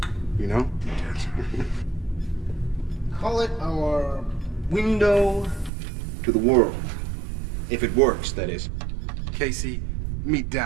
You know? Call it our window to the world. If it works, that is. Casey, meet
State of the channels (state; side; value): drops out; left; at 5.7 s